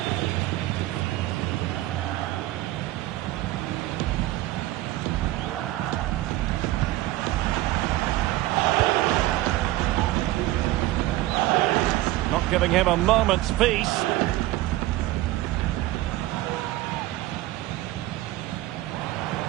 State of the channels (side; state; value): left; quieter; 16.7 dB